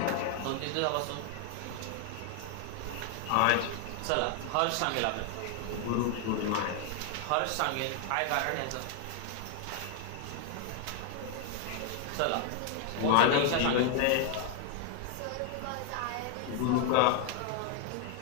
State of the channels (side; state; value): both; different; correlation 0.01